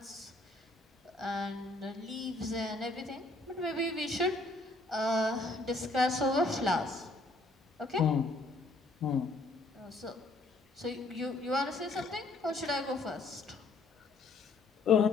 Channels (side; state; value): right; quieter; 3.1 dB